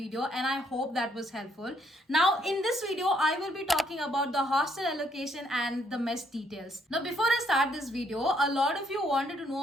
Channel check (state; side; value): normal; both; correlation 0.70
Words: and I hope that was helpful. Now in this video, I will be talking about the hostel allocation and the mess details. Now before I start this video, a lot of you wanted to